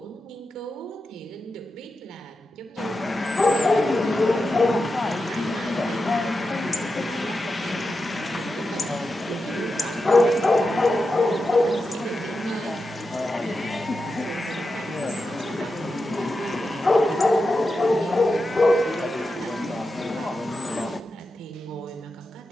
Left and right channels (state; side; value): normal; both; correlation 0.90